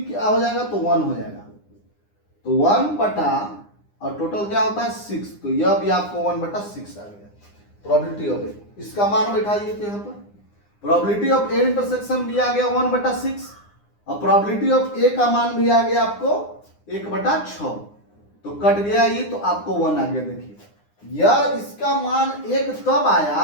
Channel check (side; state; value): right; late; 9.8 ms